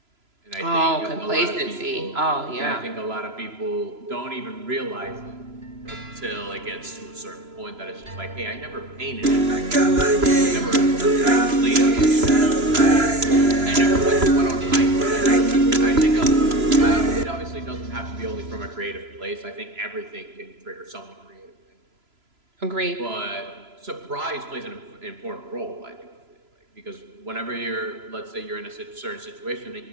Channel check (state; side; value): late; left; 3.0 ms